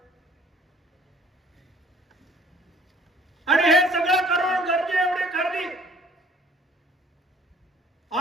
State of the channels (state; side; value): normal; both; correlation 0.55